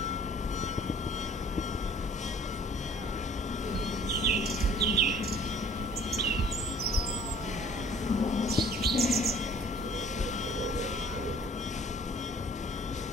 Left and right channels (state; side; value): normal; both; correlation 0.52